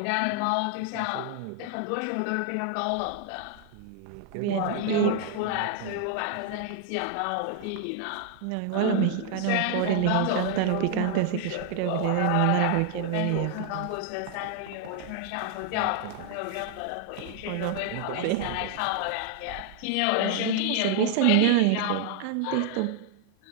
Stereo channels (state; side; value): different; both; correlation 0.00